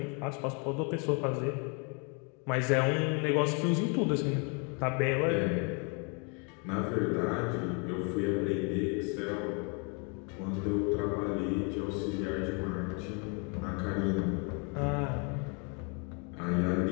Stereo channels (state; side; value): quieter; right; 35.6 dB